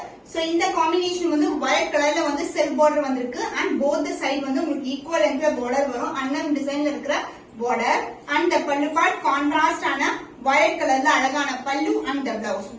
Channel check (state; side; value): identical; both; correlation 1.00